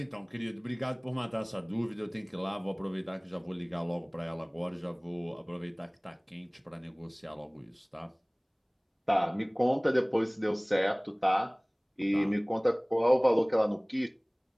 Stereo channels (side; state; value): both; identical; correlation 1.00